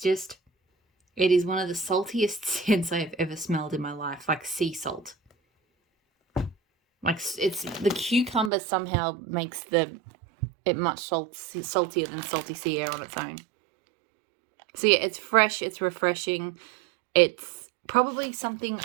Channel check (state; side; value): drops out; left; at 8.5 s